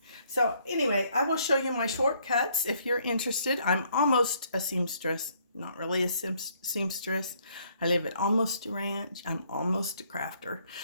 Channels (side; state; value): both; inverted; correlation -0.66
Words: So anyway, I will show you my shortcuts if you're interested. I'm almost a seamstress, not really a seamstress. I live at almost a ranch. I'm almost a crafter.